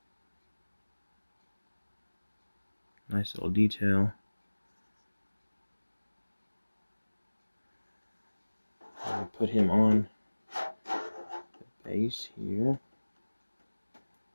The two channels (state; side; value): inverted; both; correlation -1.00